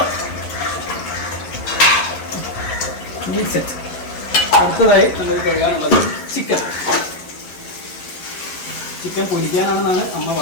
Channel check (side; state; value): right; late; 11 ms